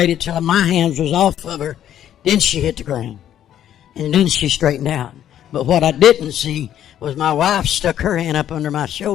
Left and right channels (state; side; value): quieter; right; 10.9 dB